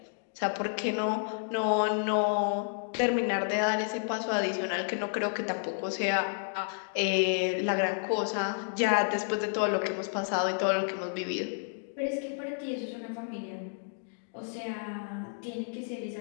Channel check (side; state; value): right; silent; digital silence